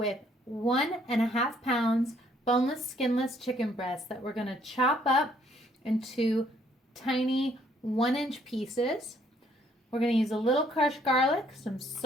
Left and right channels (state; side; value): normal; both; correlation 0.66